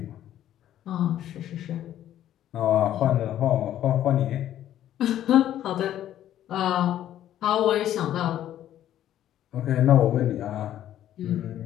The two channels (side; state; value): right; quieter; 11.8 dB